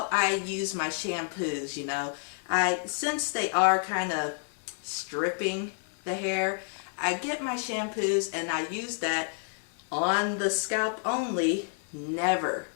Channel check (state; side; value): silent; right; 58 dB below the other